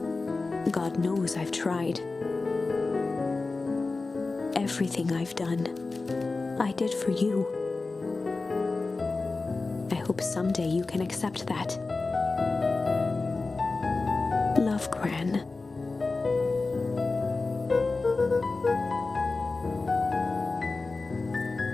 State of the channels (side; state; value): right; quieter; 3.7 dB